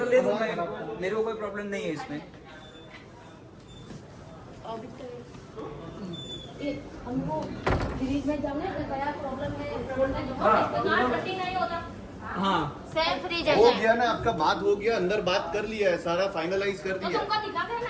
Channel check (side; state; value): both; identical; correlation 1.00